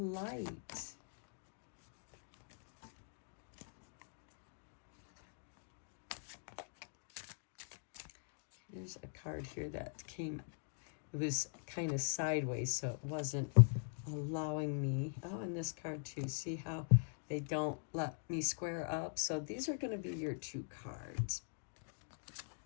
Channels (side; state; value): right; silent; digital silence